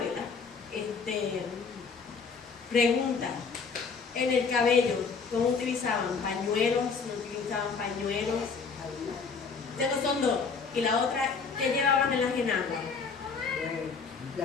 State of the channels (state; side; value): quieter; right; 5.2 dB